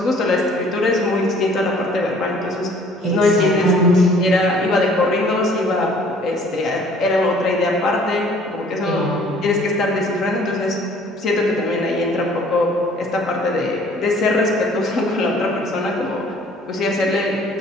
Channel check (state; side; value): normal; both; correlation 0.55